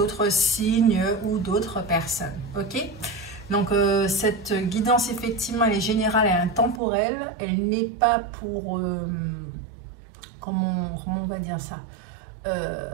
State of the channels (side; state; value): left; drops out; at 6.8 s